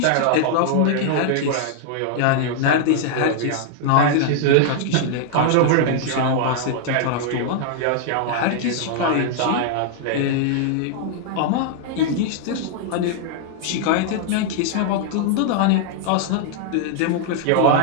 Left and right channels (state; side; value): different; both; correlation -0.01